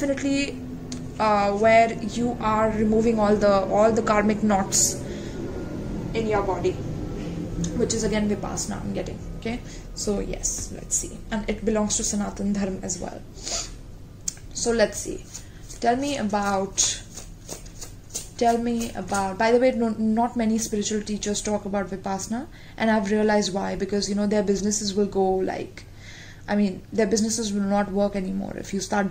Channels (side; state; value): both; identical; correlation 1.00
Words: where you are removing all the karmic knots in your body, which is again Vipassana I'm getting. Okay, so yes, let's see, and it belongs to Sanatan Dharma as well. So let's see. Tell me about, by the way, not many spiritual teachers talk about Vipassana, and I've realized why. Because their businesses will go like, their businesses will not work anymore if you start